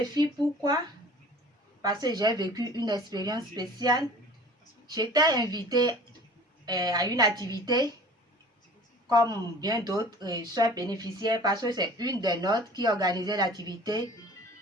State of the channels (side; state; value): both; normal; correlation 0.45